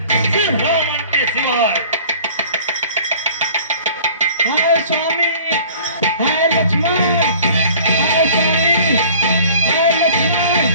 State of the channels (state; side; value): inverted; both; correlation -0.48